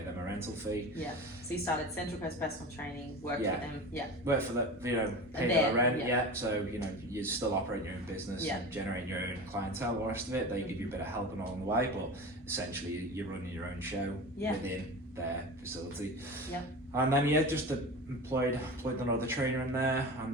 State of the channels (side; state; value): both; normal; correlation 0.31